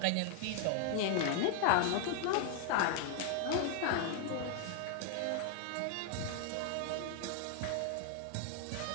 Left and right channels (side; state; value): both; different; correlation 0.00